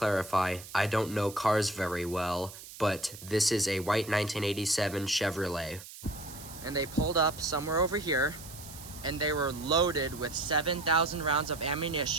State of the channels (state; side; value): noise; right; hiss, 15 dB below the sound